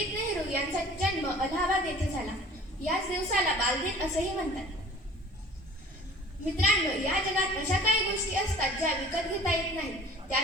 नेहरू यांचा जन्म अलाहाबाद येथे झाला. याच दिवसाला बालदिन असेही म्हणतात. मित्रांनो, या जगात अशा काही गोष्टी असतात ज्या विकत घेता येत नाही.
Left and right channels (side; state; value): both; normal; correlation 0.47